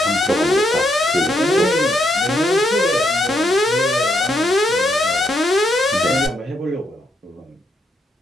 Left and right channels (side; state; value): both; normal; correlation 0.77